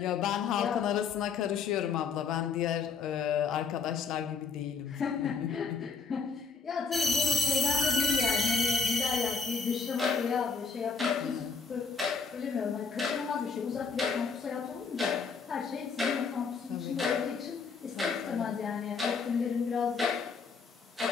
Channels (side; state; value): right; quieter; 5.3 dB